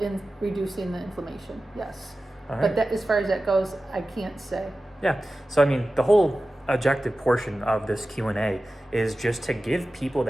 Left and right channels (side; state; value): both; normal; correlation 0.95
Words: reducing the inflammation. Yes. All right. But that, as far as that goes, I can't say. Yeah. So, I mean, the whole objective portion of this Q&A is just to give people